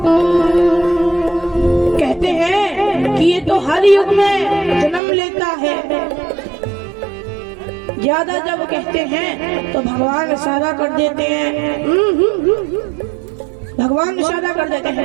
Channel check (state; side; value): drops out; left; at 5.0 s